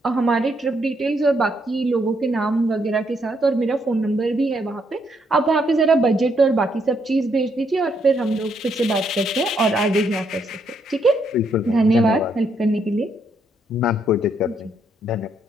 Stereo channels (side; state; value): both; normal; correlation 0.75